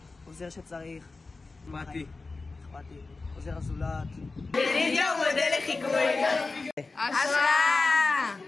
עוזר שצריך. אכפתי. עוזר הזולת. ידידיה הוא מודל לחיקוי. השראה!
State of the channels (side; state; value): right; quieter; 3.7 dB